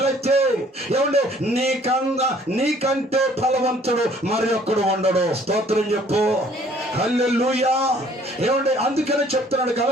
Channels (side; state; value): both; normal; correlation 0.58